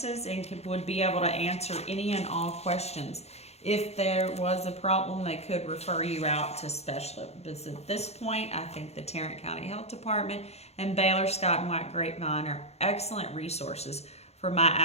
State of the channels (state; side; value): late; right; 0.31 ms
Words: and would be able to answer any and all questions. If there was a problem, they could refer you out to specialists. But at this point, I think the Tarrant County Health Department and Baylor Scott and White Grapevine are excellent resources for my